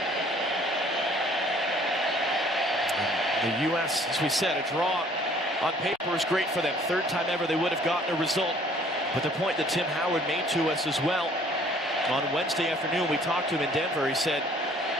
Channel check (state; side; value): normal; both; correlation 0.57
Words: The U.S., as we said, a draw on paper is great for them. 3rd time ever they would have gotten a result. But the point that Tim Howard made to us as well on Wednesday afternoon, we talked to him in Denver. He said,